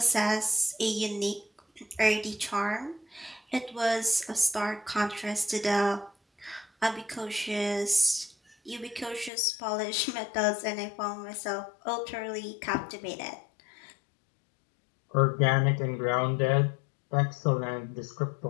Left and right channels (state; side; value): drops out; right; at 9.3 s